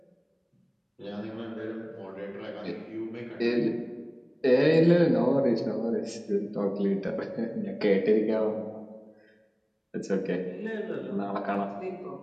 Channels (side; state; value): both; identical; correlation 1.00